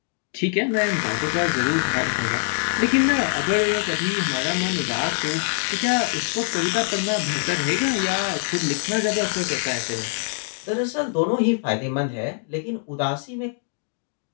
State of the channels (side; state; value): right; silent; 63 dB below the other